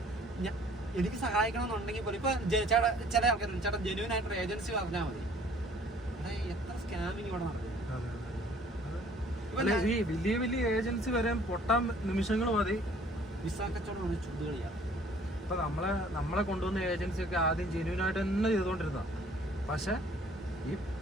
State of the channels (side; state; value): both; normal; correlation 0.56